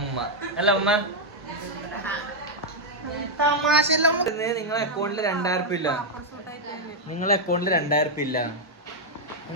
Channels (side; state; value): both; normal; correlation -0.01